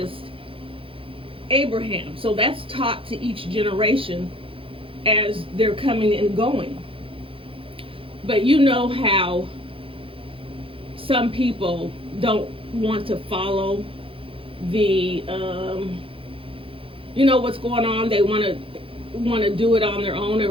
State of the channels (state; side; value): late; left; 0.26 ms